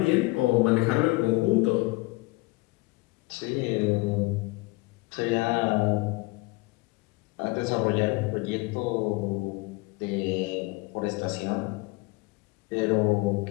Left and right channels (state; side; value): quieter; right; 23.6 dB